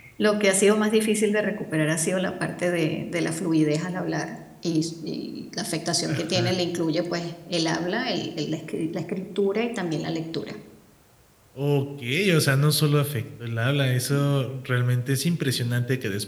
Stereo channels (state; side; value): identical; both; correlation 1.00